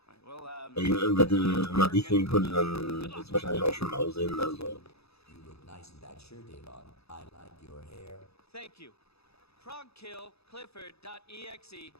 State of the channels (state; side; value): late; right; 0.78 ms